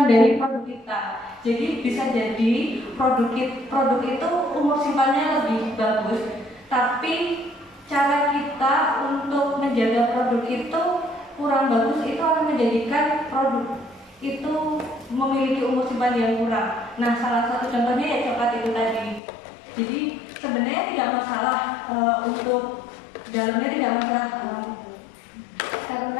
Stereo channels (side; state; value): right; drops out; at 19.2 s